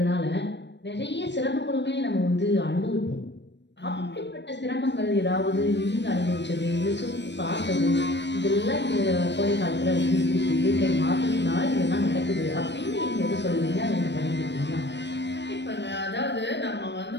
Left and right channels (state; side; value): late; right; 0.51 ms